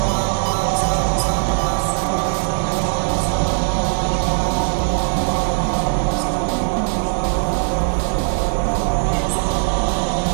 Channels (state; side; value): silent; left; digital silence